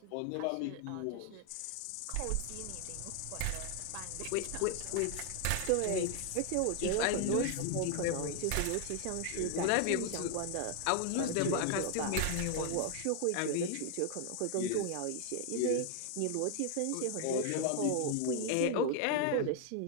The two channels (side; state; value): both; different; correlation 0.00